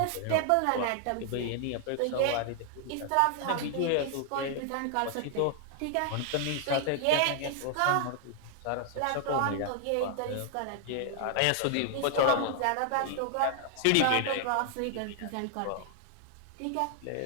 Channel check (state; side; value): different; both; correlation 0.00